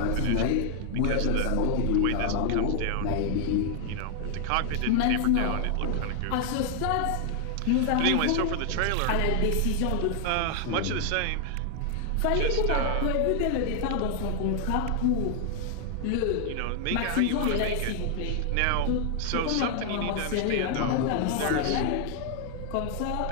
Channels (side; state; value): both; different; correlation 0.00